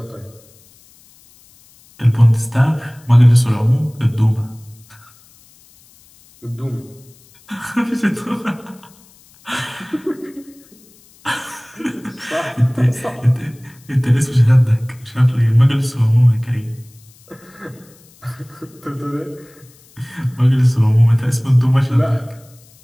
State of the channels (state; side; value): noise; left; hiss, 28 dB below the sound